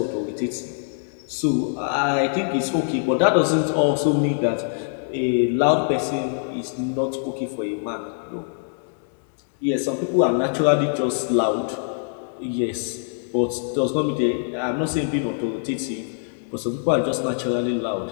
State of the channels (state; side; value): silent; right; 63 dB below the other